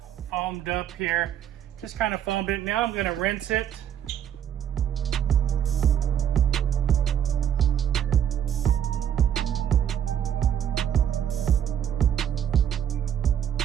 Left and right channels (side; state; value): left; quieter; 9.6 dB